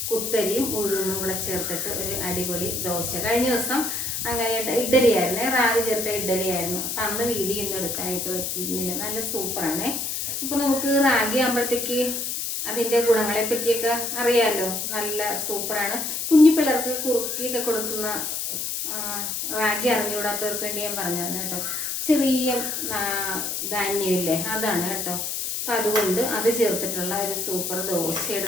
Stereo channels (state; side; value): noise; left; hiss, 2 dB below the sound